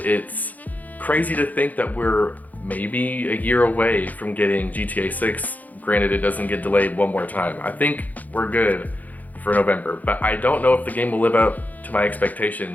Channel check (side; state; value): right; late; 0.080 ms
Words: crazy to think that we're maybe a year away from getting GTA 6. Granted, it doesn't get delayed one more time. I think we're good for November, but I don't know if the game will live up to my